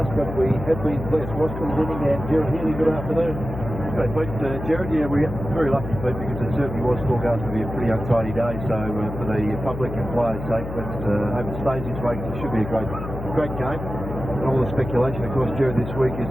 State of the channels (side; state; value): left; noise; hum, 8 dB below the sound